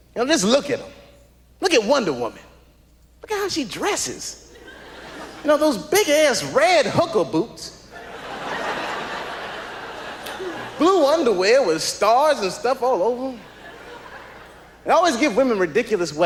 You know, just look at them. Look at Wonder Woman. Look at how she dresses. You know, those big-ass red hooker boots. Blue underwear with stars and stuff all over them. They always give women ridiculous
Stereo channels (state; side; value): identical; both; correlation 1.00